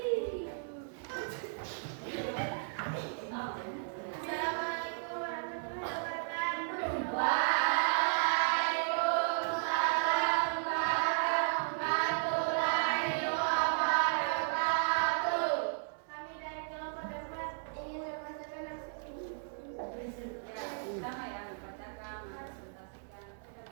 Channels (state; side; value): silent; left; 55 dB below the other